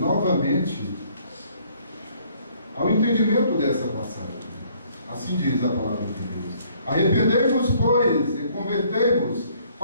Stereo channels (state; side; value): inverted; both; correlation -0.63